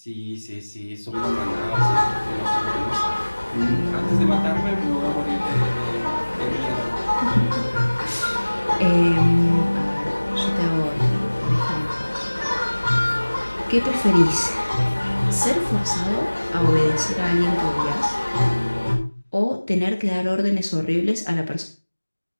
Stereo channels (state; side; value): inverted; both; correlation -1.00